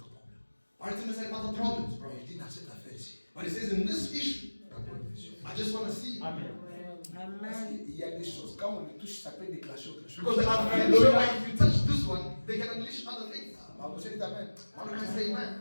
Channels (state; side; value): inverted; both; correlation -1.00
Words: problèmes. Bartimaeus had other problems, bro. Il dit dans cette affaire ici, But he says, in this issue, d'abord une vision. I just want to see. Parce qu'il y a des choses, quand on les touche, ça peut déclencher autre chose. Because I'm pretty sure if you touch this one, they can unleash other things. Ma vous dites amen. Why don't I say